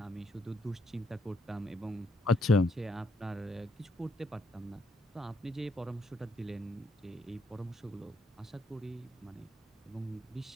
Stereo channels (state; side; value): normal; both; correlation 0.75